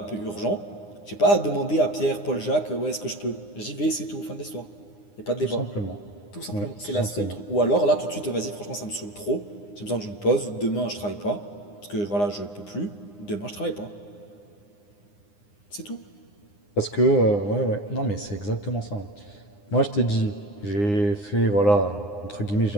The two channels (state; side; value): late; right; 9.8 ms